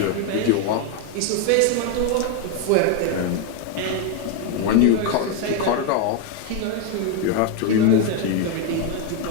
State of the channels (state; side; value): different; both; correlation 0.02